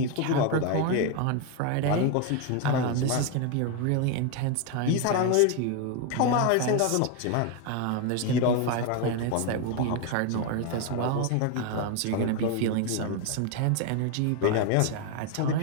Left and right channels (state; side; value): different; both; correlation 0.01